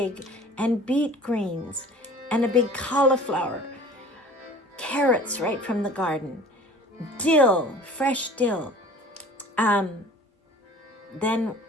and beet greens, and a big cauliflower, carrots right from the garden, dill, fresh dill, then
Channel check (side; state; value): both; normal; correlation 0.45